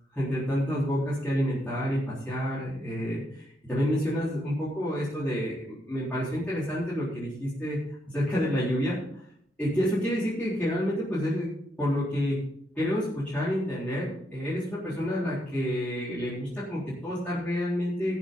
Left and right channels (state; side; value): normal; both; correlation 0.78